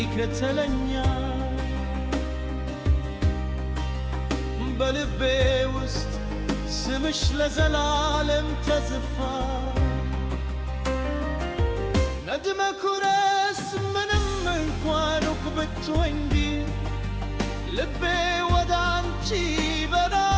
በልቤ ውስጥ ስምሽ ለዘላለም ተጽፏል። ነድመ ኩረስ ምንም እንኳን ሩቅ ብትሆኝ ልቤ ወደ አንቺ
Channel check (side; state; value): both; identical; correlation 1.00